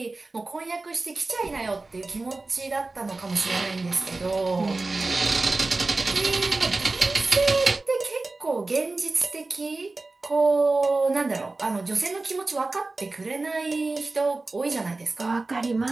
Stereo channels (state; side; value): quieter; left; 3.3 dB